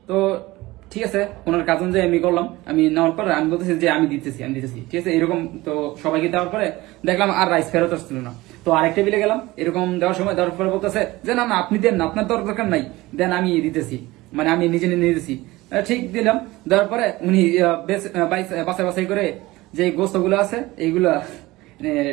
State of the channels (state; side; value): quieter; left; 19.6 dB